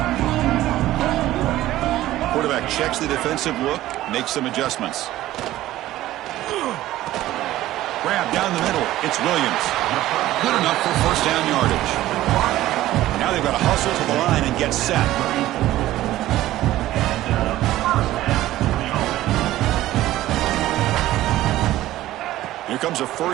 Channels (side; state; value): left; quieter; 15.1 dB